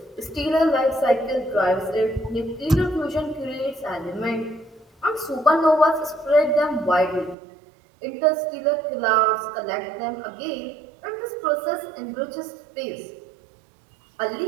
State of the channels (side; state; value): left; drops out; at 7.4 s